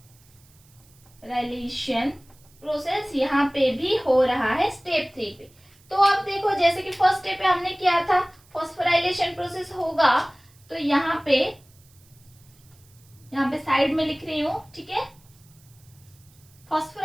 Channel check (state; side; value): noise; right; hiss, 29 dB below the sound